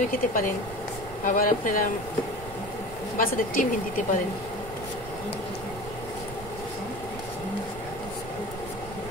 খেতে পারেন, আবার আপনারা বাচ্চাদের টিফিন দিতে পারেন।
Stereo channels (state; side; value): noise; right; rumble, 13 dB below the sound